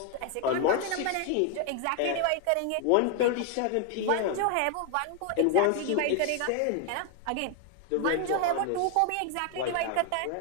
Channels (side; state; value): both; different; correlation 0.00